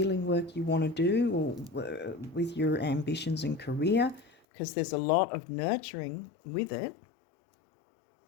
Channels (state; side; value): drops out; right; at 4.3 s